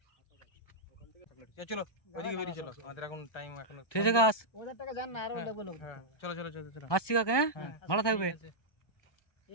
চলো ওইদিকে বেরিয়ে চলো, আমাদের এখন টাইম এখন। ঠিক আছে কাকা, ওদের টাকা জান না, আর আমরা বলবো। হ্যাঁ, চলো চলো চলো চলো। আসছি কাকা, হ্যাঁ হ্যাঁ, ভালো থাকবে। ঠিক আছে,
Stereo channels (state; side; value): late; right; 1.2 ms